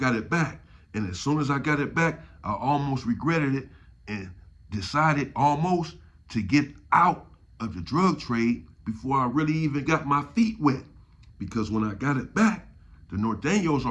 it back. And as soon as I got it back, I almost regretted it and decided almost to get out of the drug trade before I really even got my feet wet. Because when I got it back, the Norteños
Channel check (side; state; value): both; identical; correlation 1.00